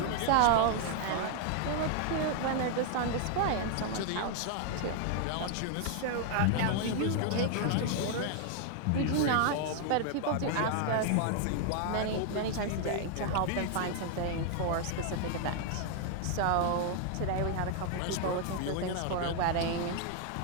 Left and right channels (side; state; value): both; different; correlation 0.00